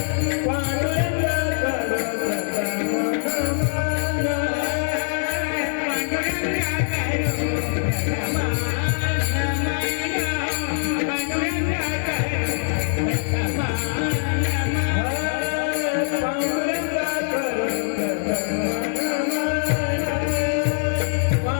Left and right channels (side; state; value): right; silent; digital silence